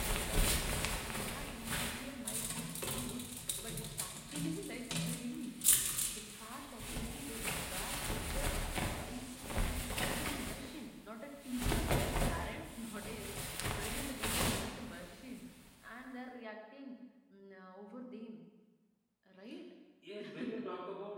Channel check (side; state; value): both; identical; correlation 1.00